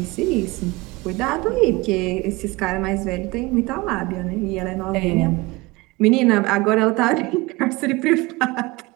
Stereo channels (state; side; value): quieter; left; 22.7 dB